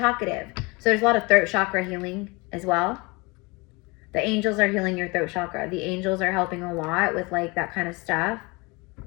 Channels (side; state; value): right; quieter; 26.5 dB